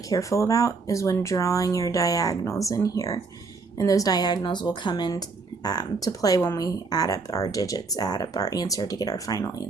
careful about, is when drawing your diagonals in here. And those diagonals will come in to play when we add up our digits, add up our answer to get our final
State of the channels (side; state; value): left; quieter; 4.3 dB